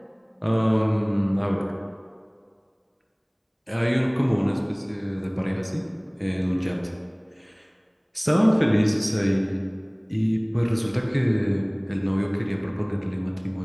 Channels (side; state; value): both; identical; correlation 1.00